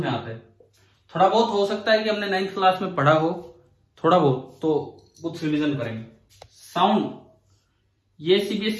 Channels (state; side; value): identical; both; correlation 1.00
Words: में आता है। थोड़ा बहुत हो सकता है कि हमने 9th क्लास में पढ़ा हो, थोड़ा बहुत तो कुछ रिवीजन करेंगे। साउंड ये